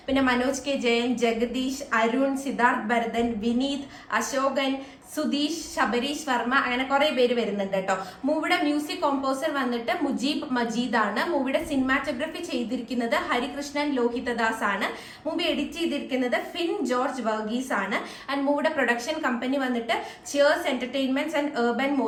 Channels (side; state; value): both; identical; correlation 1.00